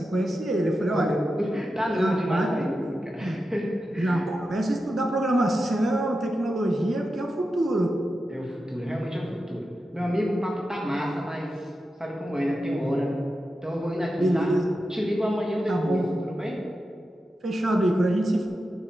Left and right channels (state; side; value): normal; both; correlation 0.90